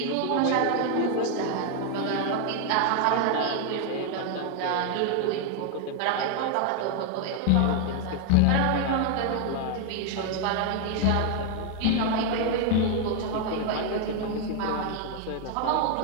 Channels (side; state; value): both; different; correlation 0.00